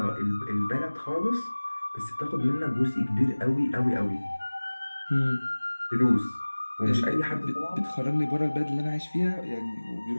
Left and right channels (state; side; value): inverted; both; correlation -1.00